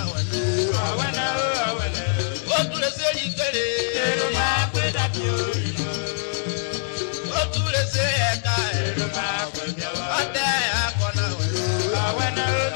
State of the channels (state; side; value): silent; right; 63 dB below the other